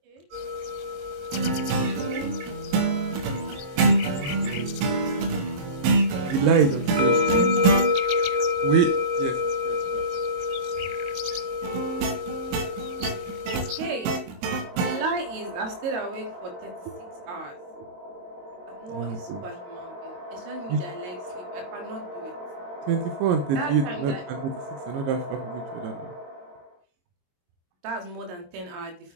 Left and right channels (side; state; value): left; late; 22 ms